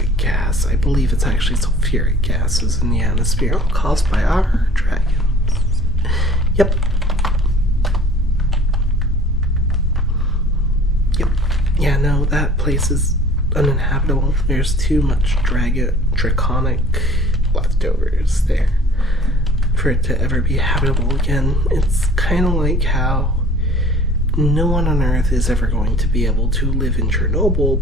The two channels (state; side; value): normal; both; correlation 0.49